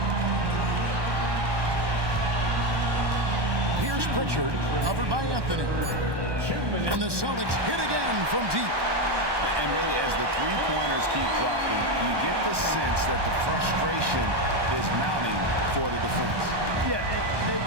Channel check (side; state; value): left; late; 1.2 ms